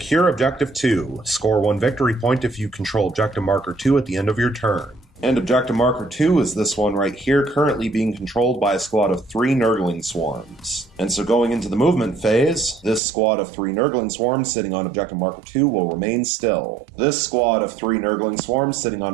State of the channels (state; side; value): drops out; left; at 13.0 s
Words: Objective 2. Score 1 victory point if you control Objective Marker 2 at the end of your turn. And Objective Marker 2 is this one right here, currently being controlled by a squad of 3 Nurgling swarms. And so going into the movement phase, this squad of 3 Nurgling swarms sitting on Objective Marker 2 will remain still. This squad of 3 Nurgling swarms sitting